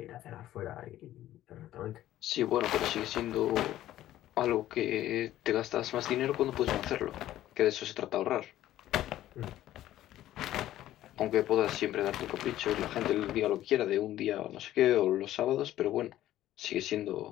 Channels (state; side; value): quieter; right; 13.6 dB